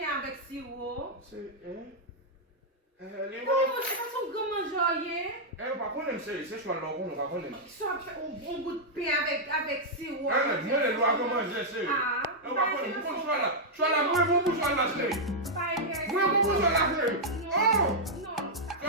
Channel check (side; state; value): both; normal; correlation -0.05